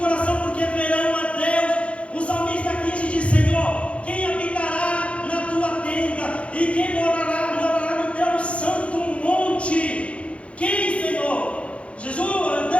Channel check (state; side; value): late; right; 0.062 ms